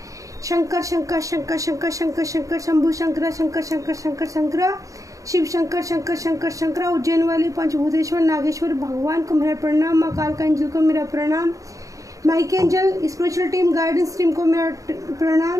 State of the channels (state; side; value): late; left; 0.16 ms